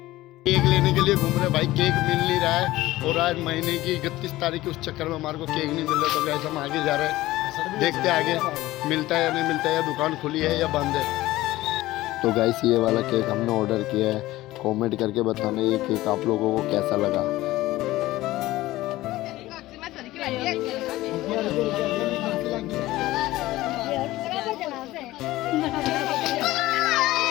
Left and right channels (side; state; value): right; quieter; 17.1 dB